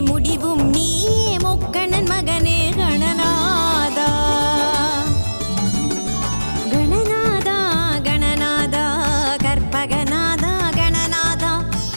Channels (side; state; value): both; inverted; correlation -1.00